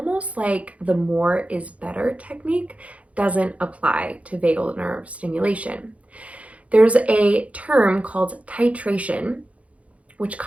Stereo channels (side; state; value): left; late; 0.065 ms